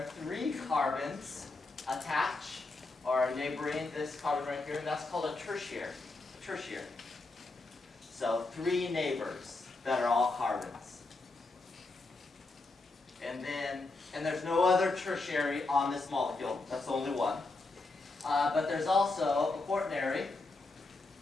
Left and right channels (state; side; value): quieter; right; 3.4 dB